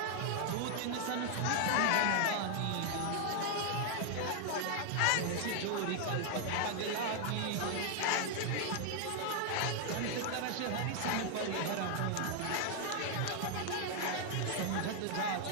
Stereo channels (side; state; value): both; different; correlation 0.00